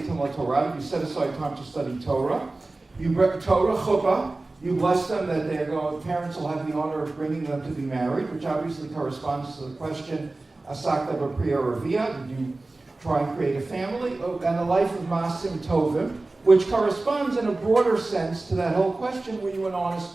Timot Torah. You set aside time to study Torah. You bring Torah chuppah. You bless them that parents will have the honor of bringing them to be married, which obviously corresponds to the question, Asakta B'Priya Ravia, did you try and create a family? And a life of Masim Tovim, which corresponds in a broader sense to that whole question, were you an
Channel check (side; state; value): left; quieter; 3.1 dB